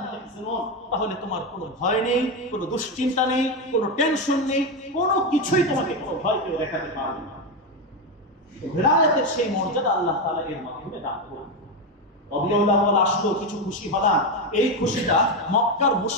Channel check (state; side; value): normal; both; correlation 0.11